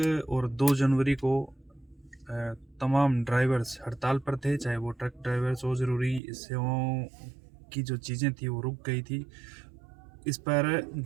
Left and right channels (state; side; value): drops out; left; at 6.2 s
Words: और 2 जनवरी को तमाम ड्राइवर्स हड़ताल पर थे, चाहे वो ट्रक ड्राइवर्स हो। ज़रूरी सेवाओं की जो चीज़ें थी वो रुक गई थी। इस पर